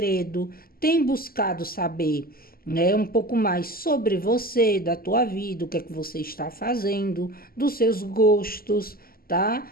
tem buscado saber, né, um pouco mais sobre você, da tua vida, o que é que você está fazendo, dos seus gostos, tá?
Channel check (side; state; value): right; late; 0.43 ms